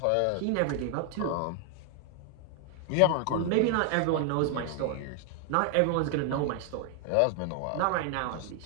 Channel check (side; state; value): both; different; correlation 0.00